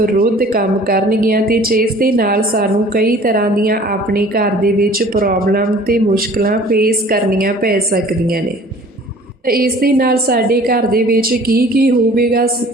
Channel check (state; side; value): normal; both; correlation 0.49